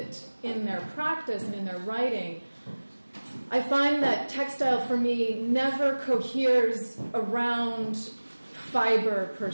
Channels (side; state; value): both; inverted; correlation -1.00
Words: in their practice and in their writing, I find that textile for me never coheres around fiber per